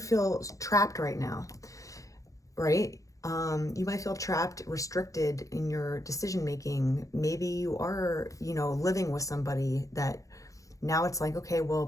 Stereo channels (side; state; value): right; late; 0.16 ms